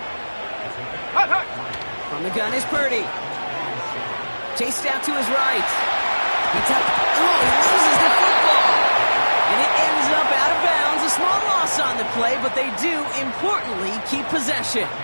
Hut, hut. From the gun is Purdy. Chased out to his right. He loses the football. And it ends up out of bounds. A small loss on the play, but they do, importantly, keep possession.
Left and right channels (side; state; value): both; inverted; correlation -1.00